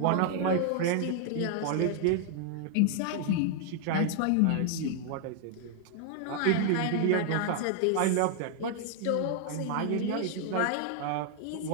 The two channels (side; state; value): both; different; correlation 0.00